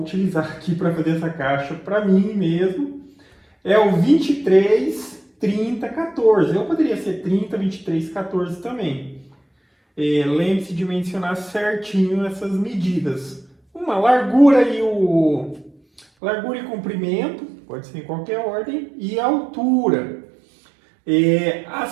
aqui para fazer essa caixa para mim mesmo é o 23, 30, 14. Eu poderia ser 30, 23, 14 também. Lembre-se de mencionar certinho essas medidas. Uma largura e comprimento, pode ser em qualquer ordem, e a altura.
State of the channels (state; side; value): drops out; left; at 16.1 s